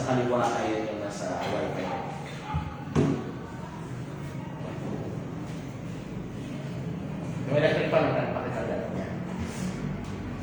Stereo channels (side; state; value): both; identical; correlation 1.00